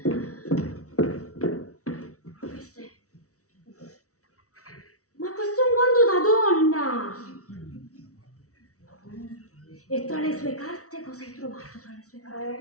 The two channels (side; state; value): right; late; 0.65 ms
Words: Questo è un guanto da donna. E tra le sue carte cosa hai trovato tra le sue